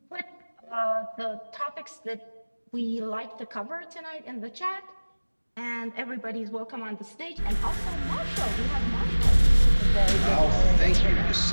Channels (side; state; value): both; inverted; correlation -1.00